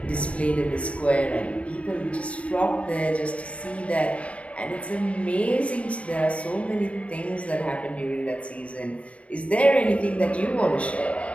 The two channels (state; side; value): late; right; 0.064 ms